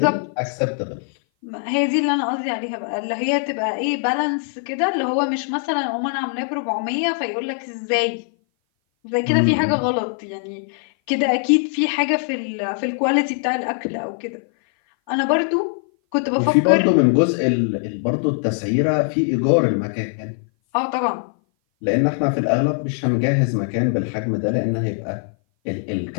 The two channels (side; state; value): right; silent; 57 dB below the other